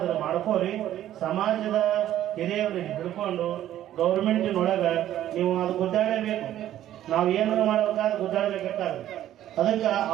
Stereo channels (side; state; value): left; quieter; 12.4 dB